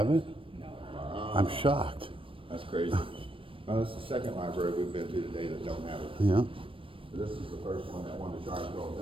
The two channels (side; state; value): left; late; 0.25 ms